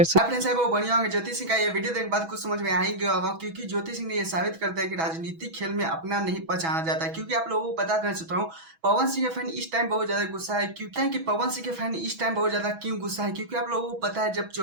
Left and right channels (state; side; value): late; left; 6.1 ms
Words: अपने साहब वो बढ़िया होंगे। ज्योति सिंह का ये वीडियो देखने के बाद कुछ समझ में आ ही गया होगा, क्योंकि ज्योति सिंह ने ये साबित कर दिया कि राजनीतिक खेल में अपना नहीं पहचाना जाता है। क्योंकि आप लोगों को बता देना चाहता हूँ, पवन सिंह के फैन इस टाइम बहुत ज्यादा गुस्सा है। क्योंकि पवन सिंह के फैन इस टाइम बहुत ज्यादा क्यों गुस्सा है, क्योंकि आप लोगों को पता है जब